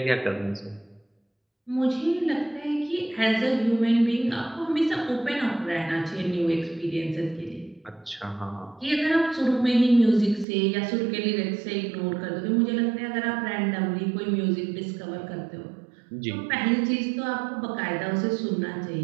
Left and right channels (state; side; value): drops out; left; at 10.5 s